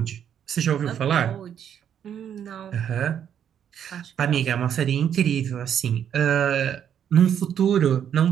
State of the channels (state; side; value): quieter; left; 9.0 dB